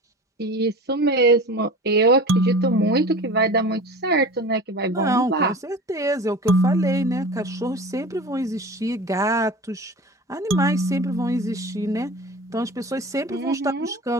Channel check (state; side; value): normal; both; correlation 0.35